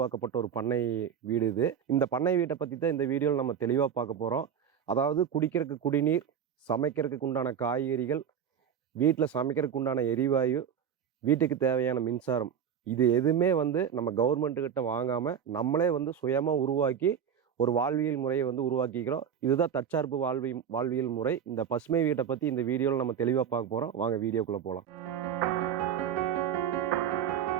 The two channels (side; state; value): left; quieter; 8.3 dB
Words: ஒரு பண்ணை வீடு இது. இந்த பண்ணை வீட்டை பற்றி தான் இந்த வீடியோவில் நம்ம தெளிவாக பார்க்க போகிறோம். அதாவது குடிக்கிறதுக்கு குடிநீர், சமைக்கிறதுக்கு உண்டான காய்கறிகள், வீட்டில் சமைக்கிறதுக்கு உண்டான எரிவாயு, வீட்டுக்கு தேவையான மின்சாரம், இது எதுவுமே வந்து நம்ம கவர்மெண்ட்டுக்கிட்ட வாங்காமல் நம்மளே வந்து சுயமாக உருவாக்கி ஒரு வாழ்வியல் முறையை வந்து உருவாக்கிக்கிறோம். இதுதான் தற்சார்பு வாழ்வியல் முறை. இந்த பசுமை வீட்டை பற்றி இந்த வீடியோவில் நம்ம தெளிவாக பார்க்க போகிறோம். வாங்க வீடியோக்குள்ளே போகலாம்.